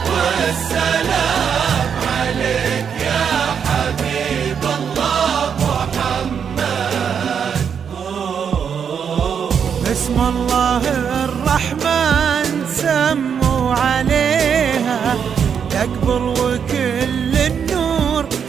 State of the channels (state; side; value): quieter; left; 7.3 dB